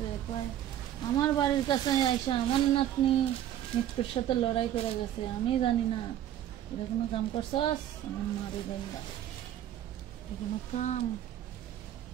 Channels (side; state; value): left; quieter; 11.5 dB